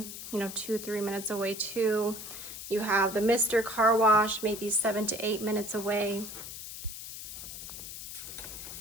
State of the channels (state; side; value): noise; left; hiss, 10 dB below the sound